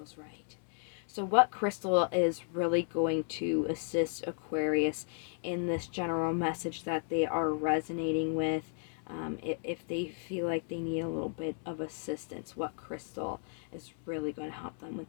right. So what crystal is really going to assist Aquarius in this general message that they are resonating with? If they feel like they need a little bit of assistance, what crystal is really going to help them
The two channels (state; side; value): silent; right; 55 dB below the other